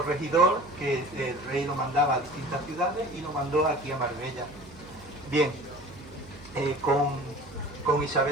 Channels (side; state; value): right; noise; hum, 21 dB below the sound